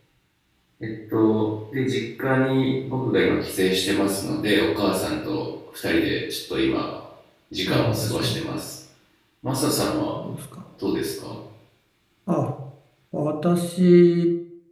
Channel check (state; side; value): identical; both; correlation 1.00